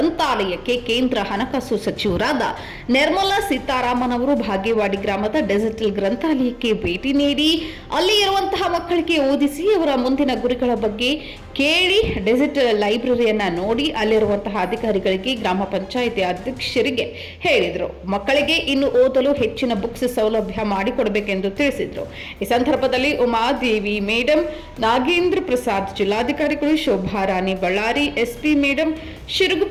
ಕೇಂದ್ರ ಹಣಕಾಸು ಸಚಿವರಾದ ನಿರ್ಮಲಾ ಸೀತಾರಾಮನ್ ಅವರು ಬಾಗೇವಾಡಿ ಗ್ರಾಮದ ಡಿಜಿಟಲ್ ಗ್ರಂಥಾಲಯಕ್ಕೆ ಭೇಟಿ ನೀಡಿ ಅಲ್ಲಿ ಇರುವಂತಹ ಮಕ್ಕಳಿಗೆ ಓದಿಸಿ ಅವರ ಮುಂದಿನ ಗುರಿಗಳ ಬಗ್ಗೆ ಕೇಳಿ ಡಿಜಿಟಲ್ ಲೈಬ್ರರಿಯನ್ನ ನೋಡಿ ಅಲ್ಲಿರುವಂತಹ ಅಧಿಕಾರಿಗಳಿಗೆ ಗ್ರಾಮ ಪಂಚಾಯಿತಿ ಅಧ್ಯಕ್ಷರಿಗೆ ಹೇಳಿದರು. ಮಕ್ಕಳಿಗೆ ಇನ್ನು ಓದಲು ಹೆಚ್ಚಿನ ಬುಕ್ಸ್ ಸೌಲಭ್ಯ ಮಾಡಿಕೊಡಬೇಕೆಂದು ತಿಳಿಸಿದರು. ಈ ಸಂದರ್ಭದಲ್ಲಿ ಉಮಾದೇವಿ ಮೇಡಂ, ನಾಗೇಂದ್ರ ಪ್ರಸಾದ್ ಜಿಲ್ಲಾಧಿಕಾರಿಗಳು, ಶೋಭಾರಾಣಿ ಬಳ್ಳಾರಿ ಎಸ್ಪಿ ಮೇಡಂ,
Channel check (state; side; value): identical; both; correlation 1.00